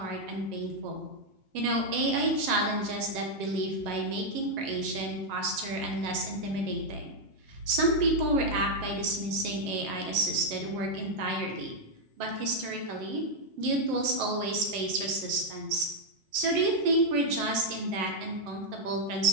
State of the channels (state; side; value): late; left; 7.7 ms